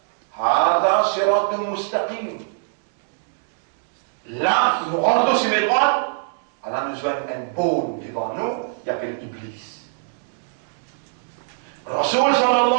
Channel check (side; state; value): left; silent; digital silence